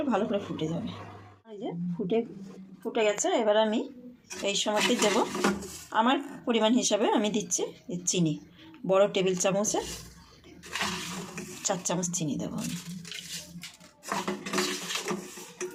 ভালো করে ফুটে যাবে। এই যে ফুটে গেছে। এবার আমি এই সময়তে দেব আমার পরিমাণ হিসাবে আমি দিচ্ছি চিনি। বড় টেবিল চামচে 4 চামচ চিনি দেবো আমি।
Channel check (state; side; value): identical; both; correlation 1.00